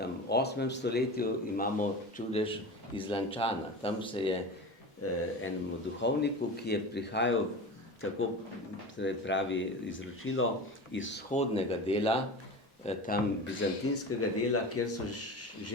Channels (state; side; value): normal; both; correlation 0.31